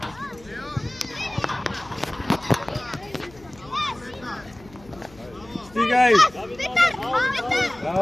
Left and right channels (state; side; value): noise; left; hum, 23 dB below the sound